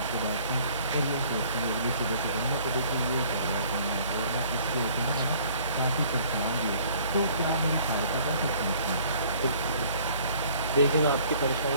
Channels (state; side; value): inverted; both; correlation -0.56